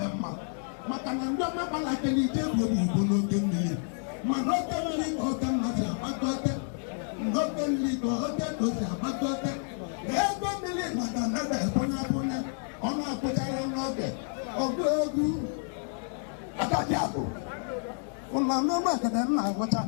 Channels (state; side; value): silent; right; 57 dB below the other